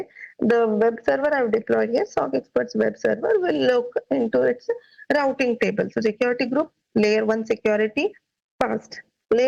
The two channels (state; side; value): identical; both; correlation 1.00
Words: the web server I've deployed here, SOC Experts web server, will look into its routing table. So security group, layer 1 security, fast.